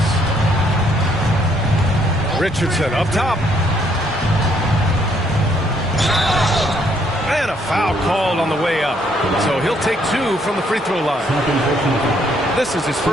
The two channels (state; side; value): normal; both; correlation 0.68